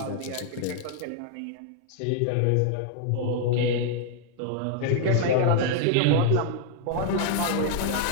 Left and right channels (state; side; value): different; both; correlation 0.00